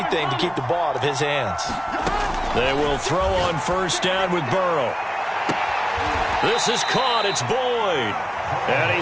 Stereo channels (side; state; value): both; identical; correlation 1.00